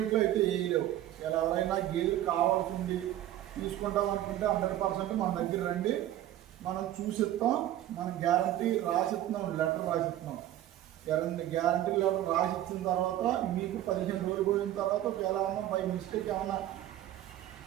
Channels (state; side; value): quieter; left; 13.1 dB